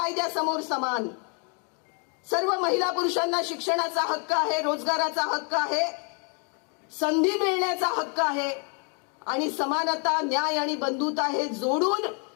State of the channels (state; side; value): quieter; right; 38.0 dB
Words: समान. सर्व महिला पुरुषांना शिक्षणाचा हक्क आहे, रोजगाराचा हक्क आहे, संधी मिळण्याचा हक्क आहे आणि समानता, न्याय आणि बंधुता हे जोडून